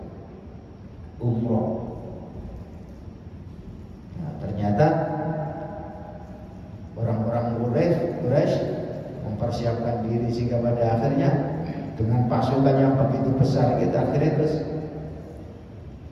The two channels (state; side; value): identical; both; correlation 1.00